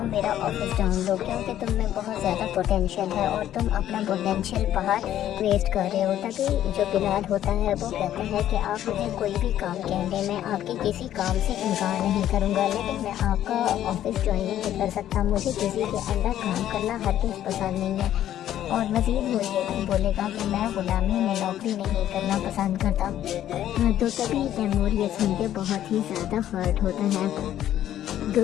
मेरा ऑफिस ढूंढ लो, क्योंकि तुम में बहुत ज़्यादा पोटेंशियल है और तुम अपना पोटेंशियल बाहर वेस्ट कर रहे हो। तभी जो बिलाल होता है वो कहता है कि आप मुझे कोई भी काम कह दें, मैं आपके किसी काम से इनकार नहीं करूँगा, लेकिन मैं आपका ऑफिस ज्वाइन नहीं कर सकता, मुझे किसी के अंडर काम करना हरगिज़ पसंद नहीं है। और मज़ीद वो ये भी बोलेगा कि मैं गुलामी में नौकरी नहीं करना पसंद करता। तो तभी तैमूर ये सुन के बहुत ही ज़्यादा हर्ट होता है।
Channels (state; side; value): quieter; right; 11.7 dB